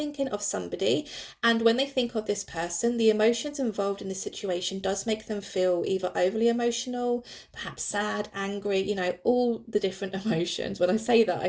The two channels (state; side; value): identical; both; correlation 1.00